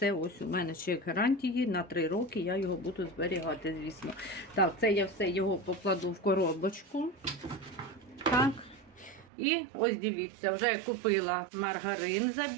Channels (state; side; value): drops out; left; at 9.2 s